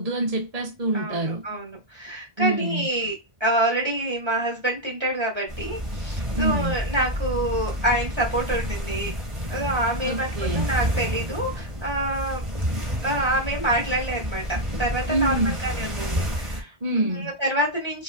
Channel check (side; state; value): left; late; 1.5 ms